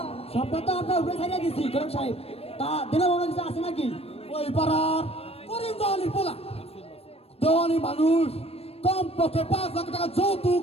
সবটা তো আপনার উপরে ছাড়িয়ে দিচ্ছি ঘটক সাহেব। তা দিনে মনে কিছু আছে নাকি? ওই পাড়ার করিম দেওয়ানি পোলা, দেওয়ানি মানুষ। কম পক্ষে 5 লাখ টাকা যৌতুক,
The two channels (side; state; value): right; late; 0.28 ms